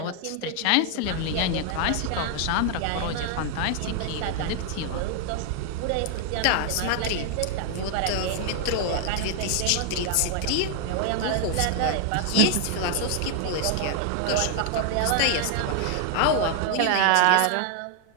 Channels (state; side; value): different; both; correlation 0.00